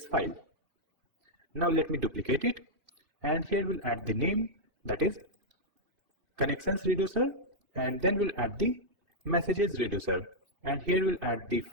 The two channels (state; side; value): late; left; 2.6 ms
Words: file. Now let me duplicate it, and here we'll add the name, that is connections reducer, and then we'll add the messages reducer, and here we'll add the